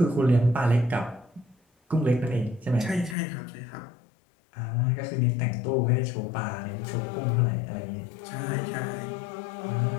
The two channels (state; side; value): drops out; right; at 3.2 s